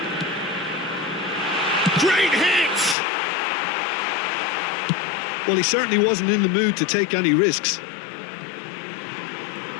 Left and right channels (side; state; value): right; drops out; at 3.0 s